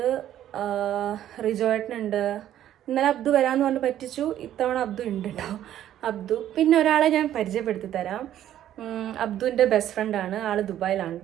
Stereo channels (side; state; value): left; quieter; 11.7 dB